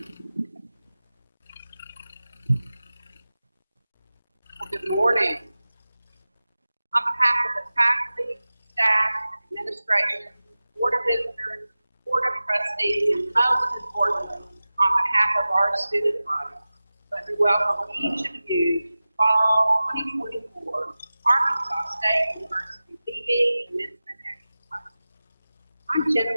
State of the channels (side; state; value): both; inverted; correlation -0.96